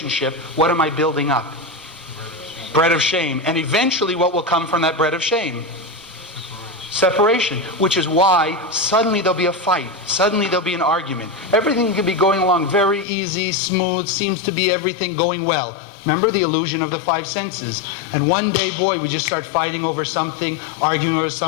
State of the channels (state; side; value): drops out; right; at 13.1 s